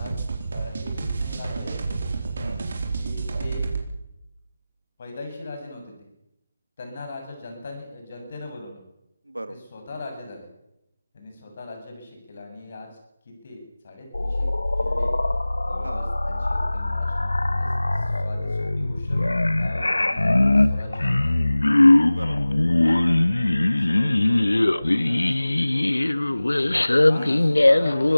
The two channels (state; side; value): inverted; both; correlation -0.98